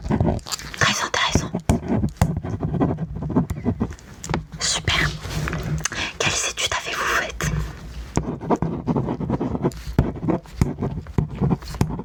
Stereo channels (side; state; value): both; identical; correlation 1.00